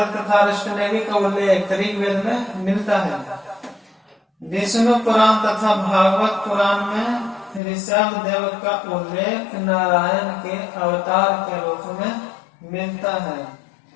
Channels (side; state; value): right; drops out; at 7.6 s